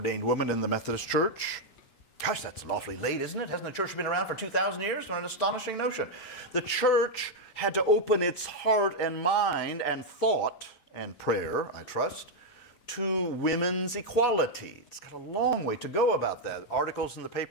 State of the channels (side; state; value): right; late; 5.9 ms